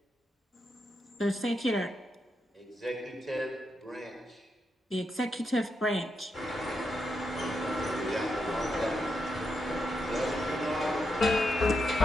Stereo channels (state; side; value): normal; both; correlation 0.84